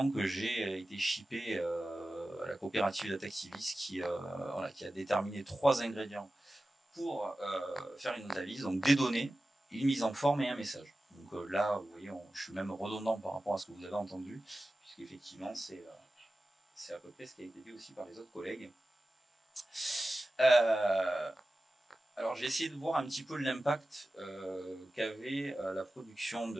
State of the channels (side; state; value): both; normal; correlation 0.95